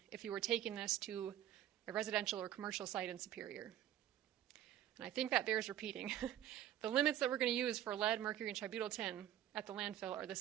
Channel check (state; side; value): quieter; left; 11.8 dB